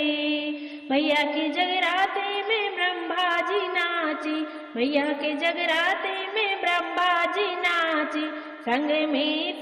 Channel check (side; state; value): both; identical; correlation 1.00